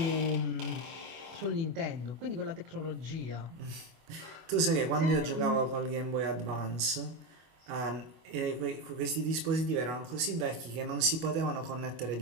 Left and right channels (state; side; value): late; left; 24 ms